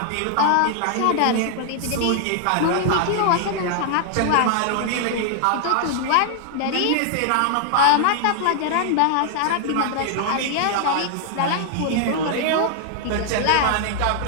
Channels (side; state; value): both; different; correlation 0.00